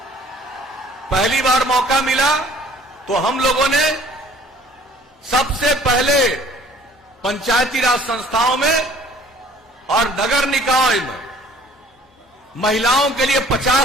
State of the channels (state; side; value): normal; both; correlation 0.54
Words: मिला तो हम लोगों ने सबसे पहले पंचायती राज संस्थाओं में और नगर निकाय में महिलाओं के लिए